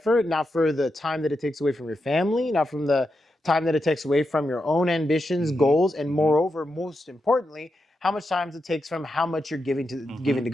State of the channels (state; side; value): normal; both; correlation 0.86